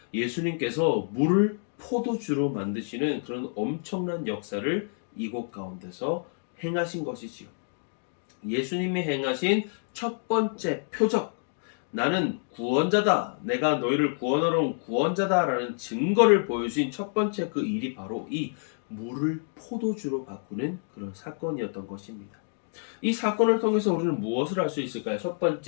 예수님께서 물을 포도주로 만드시는 그런 엄청난 역사를 이곳 가운데서 행하신 것이지요. 예수님이 행하신 첫 번째 표적, 나는 구원자다, 내가 너희를 구원하러 온 구원자다 라는 증거를 보여주신 첫 번째 그 일이 바로 이 물을 포도주로 바꾸는 그런 사건이었던 것입니다. 이 사건을 통해서 우리는 무엇을 할 수 있을까요? 첫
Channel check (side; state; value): right; silent; digital silence